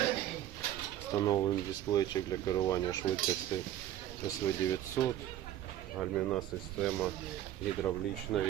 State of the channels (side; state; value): left; quieter; 12.3 dB